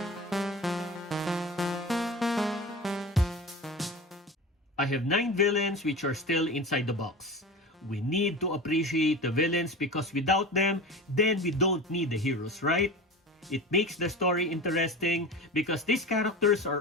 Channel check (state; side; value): normal; both; correlation 0.31